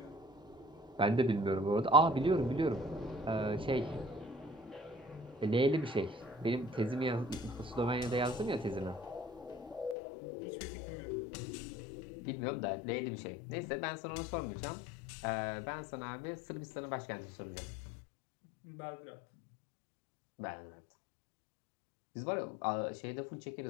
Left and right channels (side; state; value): right; drops out; at 10.0 s